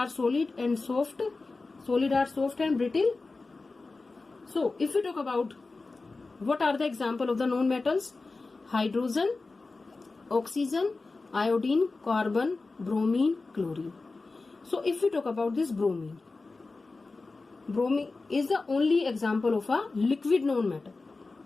solid are soft and brittle. So if we talk about what are the example of the non-metals: hydrogen, oxygen, iodine, carbon, bromine, chlorine. So if we talk about this bromine is the only example of a liquid non-metal.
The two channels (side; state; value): right; quieter; 3.7 dB